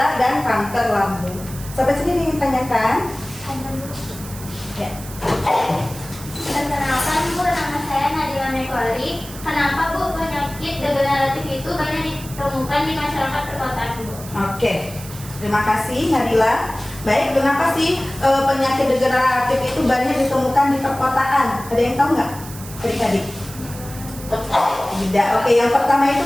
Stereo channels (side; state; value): right; noise; hiss, 15 dB below the sound